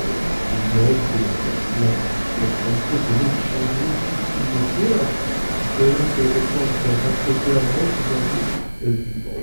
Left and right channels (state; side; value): inverted; both; correlation -1.00